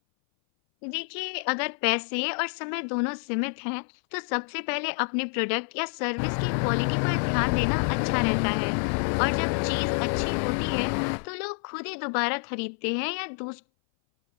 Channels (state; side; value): silent; right; 58 dB below the other